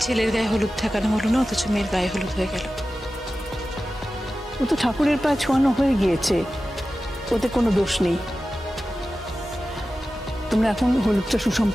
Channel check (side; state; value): both; normal; correlation 0.94